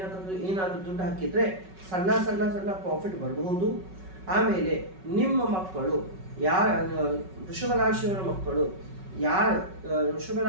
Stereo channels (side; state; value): left; late; 5.3 ms